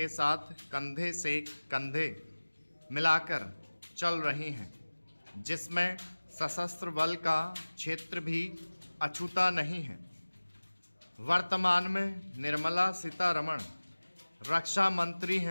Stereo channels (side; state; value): both; inverted; correlation -1.00